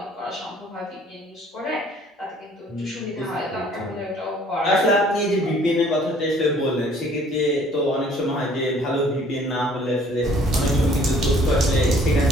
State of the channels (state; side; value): normal; both; correlation 0.57